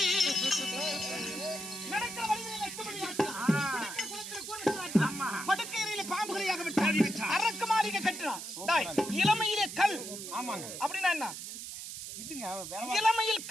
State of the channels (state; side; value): noise; right; hiss, 9 dB below the sound